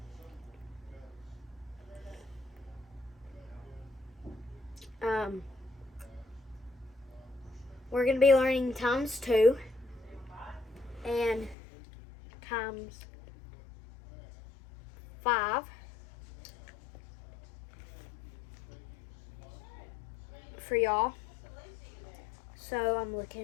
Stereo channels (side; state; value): right; drops out; at 11.6 s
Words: We're going to be learning times 2 and times 5 for y'all. So I'm